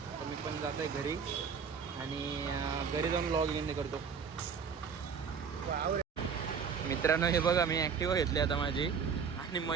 मी पण जातो आहे घरी आणि घरी जाऊन लॉग इन करतो. मित्रांनो हे बघा मी ॲक्टिवा घेतली आता माझी आणि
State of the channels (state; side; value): quieter; left; 6.3 dB